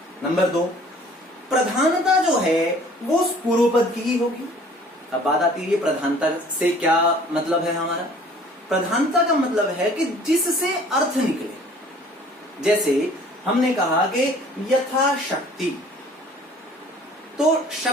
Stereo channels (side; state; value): both; normal; correlation 0.52